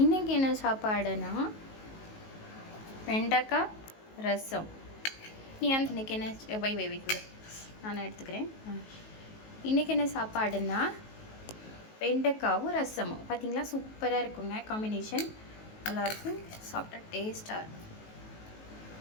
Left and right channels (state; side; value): late; right; 19 ms